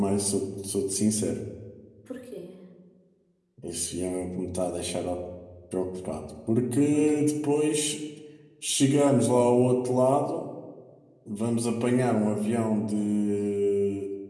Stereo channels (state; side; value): identical; both; correlation 1.00